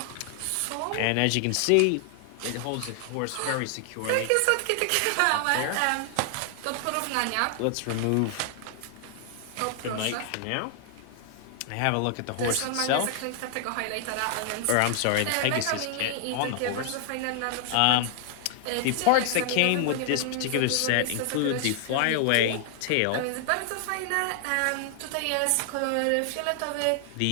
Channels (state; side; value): different; both; correlation 0.00